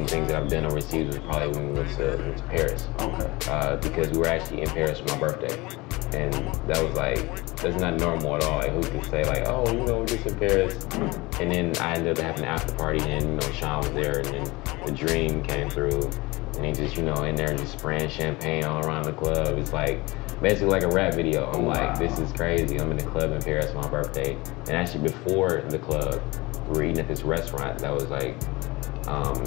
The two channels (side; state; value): right; quieter; 22.9 dB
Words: things that I've done overseas was probably when we went to Paris. Okay. Because we were actually in Paris for my birthday. And that was like, that's not normal at all. Like, who can say like, oh, you know, we're just in Paris. And then I ended up having an after party, and you know, Sean was there, and then the Dream came through, and he just, you know, in there just spraying champagne all around the club. It's like, basically like a rap video. I'm like, this is crazy. I'm in the club in Paris for my birthday. And actually before the club, we were eating at this restaurant that was like,